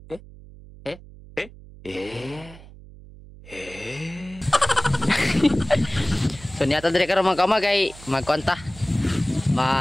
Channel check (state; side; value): noise; right; hum, 18 dB below the sound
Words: So niya to diri karon mga kauma kay magkonta.